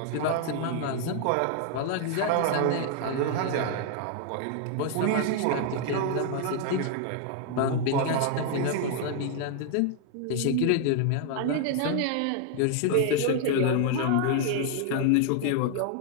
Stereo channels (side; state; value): both; different; correlation 0.00